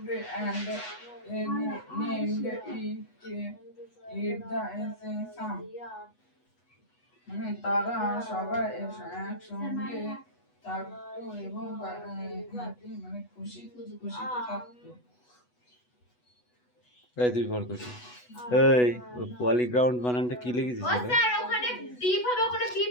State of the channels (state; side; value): late; right; 8.1 ms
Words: named it the sum মানে তারা সবাই একসঙ্গে থাকতো এবং মানে খুশিতে থাকতো এই তুই ভর করছিস এই পলিগ্রাউন্ড বানানটা কি লিখেছিস ও স্যার ওখানে ডিপ হবে ওখানে